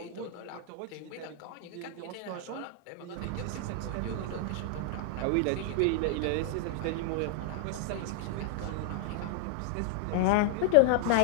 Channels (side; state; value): both; different; correlation -0.01